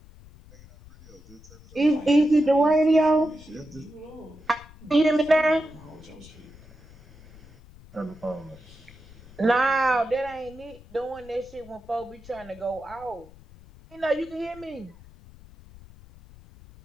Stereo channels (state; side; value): noise; left; rumble, 22 dB below the sound